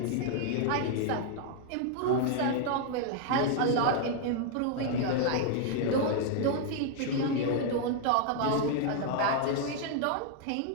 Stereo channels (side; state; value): both; different; correlation 0.00